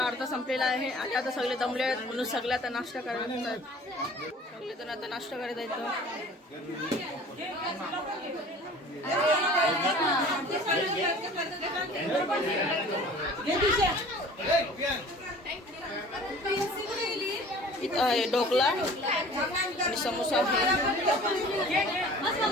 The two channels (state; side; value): normal; both; correlation 0.46